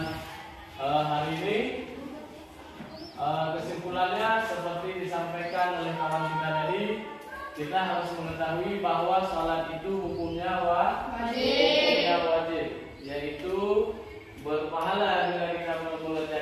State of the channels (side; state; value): both; identical; correlation 1.00